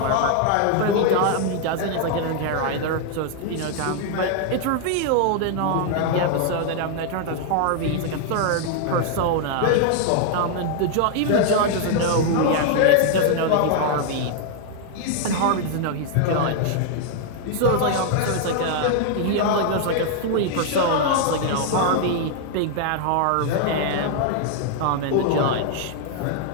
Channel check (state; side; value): different; both; correlation 0.00